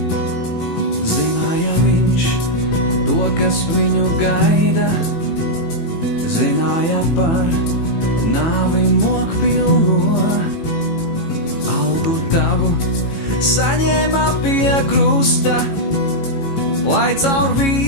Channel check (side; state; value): right; late; 18 ms